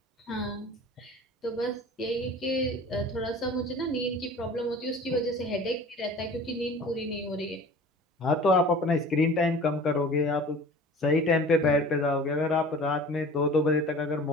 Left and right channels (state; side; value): normal; both; correlation 0.43